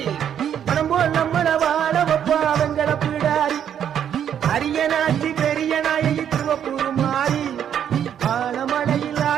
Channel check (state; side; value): quieter; left; 9.2 dB